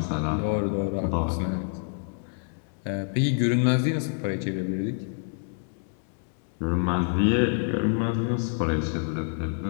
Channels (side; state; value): right; silent; 60 dB below the other